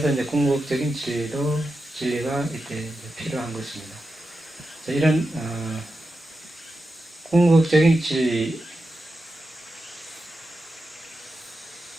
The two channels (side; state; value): both; normal; correlation 0.89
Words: 이제 궁극적인 진리가 이때 필요한 것입니다. 이런 궁극적인 진리,